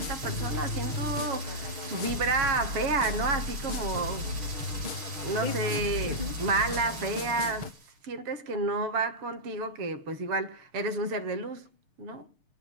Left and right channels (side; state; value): left; late; 6.6 ms